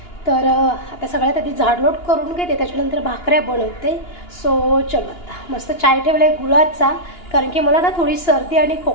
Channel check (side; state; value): right; late; 2.9 ms